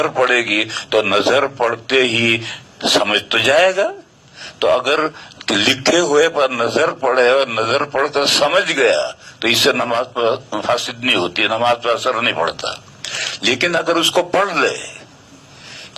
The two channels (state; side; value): identical; both; correlation 1.00